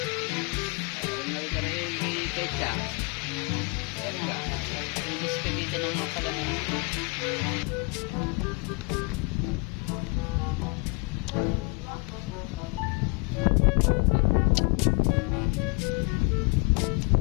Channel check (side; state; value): right; quieter; 31.2 dB